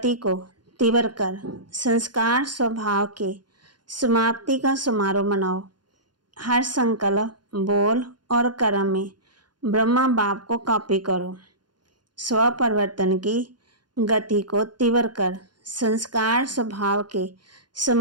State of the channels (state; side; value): late; left; 0.71 ms